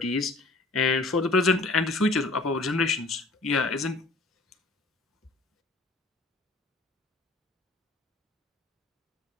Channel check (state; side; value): quieter; right; 3.2 dB